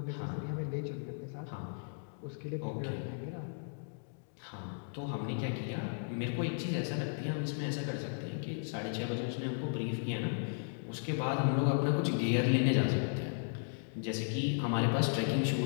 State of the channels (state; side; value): silent; right; digital silence